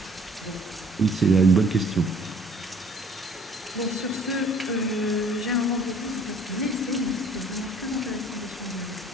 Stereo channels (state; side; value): normal; both; correlation 0.56